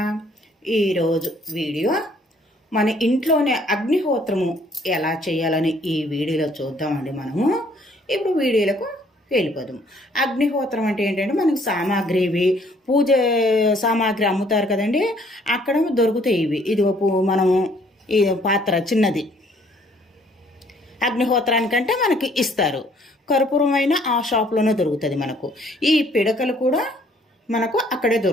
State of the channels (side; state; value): both; normal; correlation 0.62